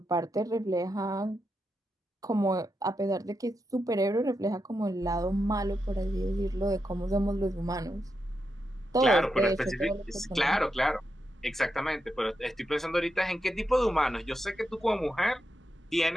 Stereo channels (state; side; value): normal; both; correlation 0.86